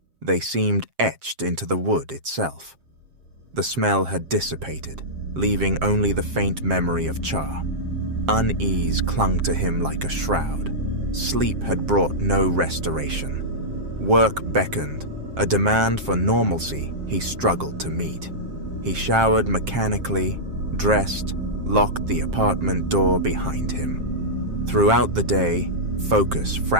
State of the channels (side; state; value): left; late; 7.5 ms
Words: They seemed etched into the wood itself. The smell had dissipated, leaving only the faint memory of char. Unease clung to him like a shroud. Sleep had brought no restoration. Work beckoned, a demand for normalcy he struggled to meet. He showered mechanically, dressed, locked the apartment door behind him. Throughout the day, focus